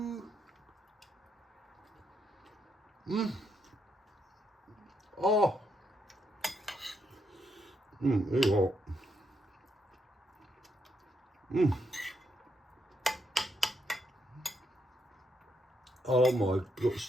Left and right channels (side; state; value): both; normal; correlation 0.78